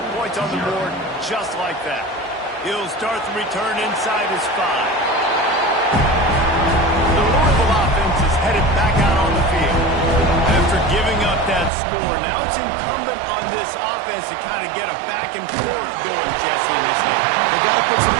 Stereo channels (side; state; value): left; drops out; at 11.7 s